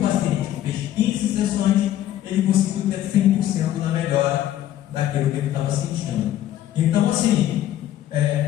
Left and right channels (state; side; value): quieter; right; 12.5 dB